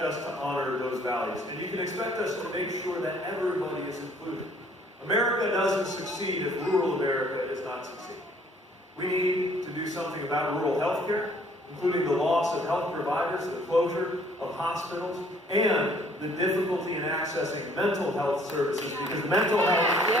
us to honor those values. And you can expect us to make sure that everybody is included. America doesn't succeed if rural America is not succeeding. We need to do something about rural health care, including the loss of health providers, the closure of hospitals, and the difficulty in accessing mental health services, because mental health is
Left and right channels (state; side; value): normal; both; correlation 0.60